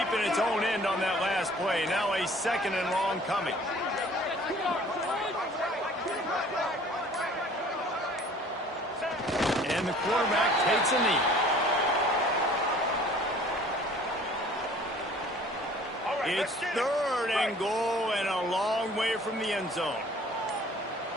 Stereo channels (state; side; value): normal; both; correlation 0.51